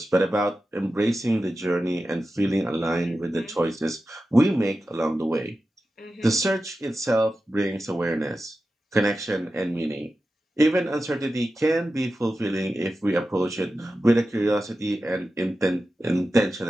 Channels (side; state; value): both; normal; correlation 0.92